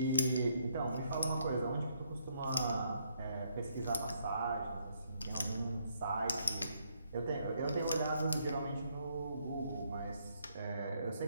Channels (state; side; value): inverted; both; correlation -0.72